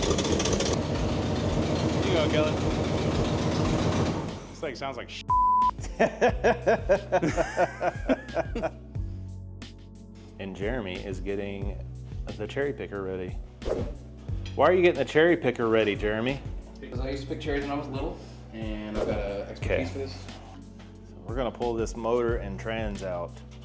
You go, Kelly. This thing sounds like shit. And Jeremy is getting the cherry picker ready. Why are you getting the cherry picker ready, Jeremy? Because I used to pick cherries when I was little, and I've got an extra Okay. piece for this. So we're gonna pull this motor and trans out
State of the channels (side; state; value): both; identical; correlation 1.00